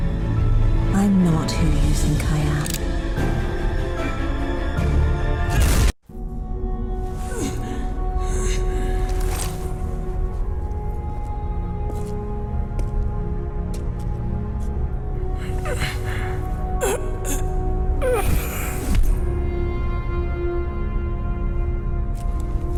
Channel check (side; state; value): both; identical; correlation 1.00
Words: I'm not who you think I am.